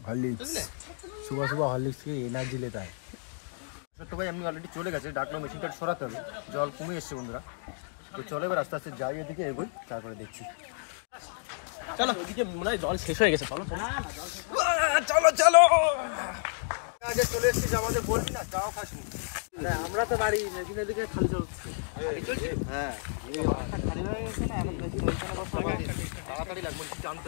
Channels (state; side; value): silent; right; digital silence